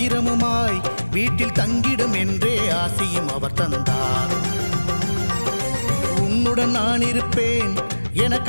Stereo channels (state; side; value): inverted; both; correlation -1.00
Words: வீட்டில் தங்கிடும் என்றே ஆசியும் அவர் தந்தார். உன்னுடன் நான் இருப்பேன் என